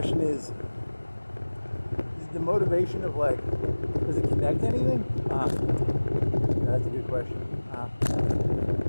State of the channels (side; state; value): both; inverted; correlation -1.00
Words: is the motivation of, like, does it connect anything? That's a good question.